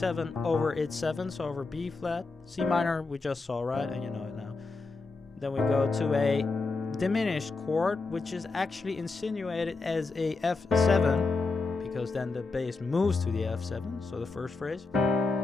over its 7, so over B flat. C minor we just saw, right? And you know it now. Then we go to a diminished chord, which is actually insinuated as a F7, because then the bass moves to the F7. So the first phrase,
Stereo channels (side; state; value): right; quieter; 3.8 dB